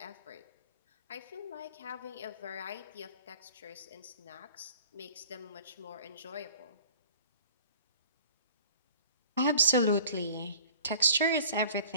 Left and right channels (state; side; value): inverted; both; correlation -0.47